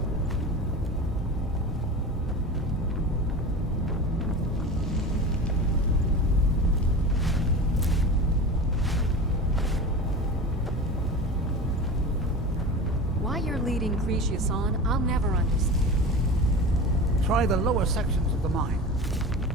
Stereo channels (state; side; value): normal; both; correlation 0.31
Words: Why you're leading Cretius on, I'll never understand. Try the lower sections of the mine.